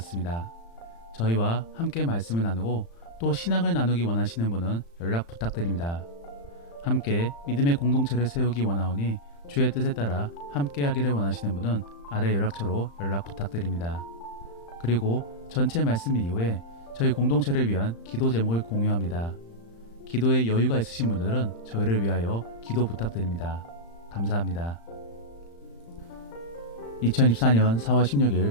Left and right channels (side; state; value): right; late; 35 ms